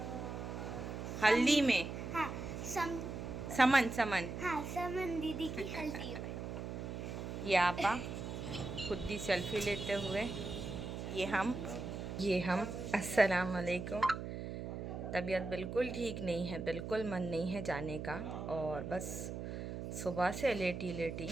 हल्दी में? हाँ समन समन। हाँ, समन दीदी की हल्दी में। ये आपा खुद ही सेल्फी लेते हुए, ये हम अस्सलाम वालेकुम। तबीयत बिल्कुल ठीक नहीं है, बिल्कुल मन नहीं है जाने का, और बस सुबह से लेटी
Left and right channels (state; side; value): noise; right; hum, 6 dB below the sound